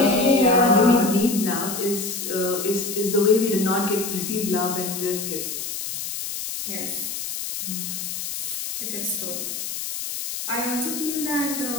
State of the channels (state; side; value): noise; left; hiss, 5 dB below the sound